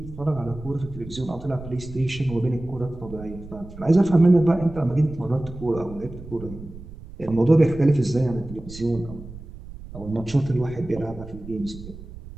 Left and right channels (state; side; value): noise; right; rumble, 15 dB below the sound